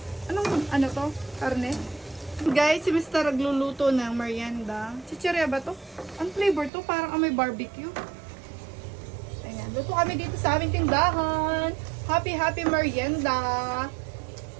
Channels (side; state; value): left; drops out; at 6.7 s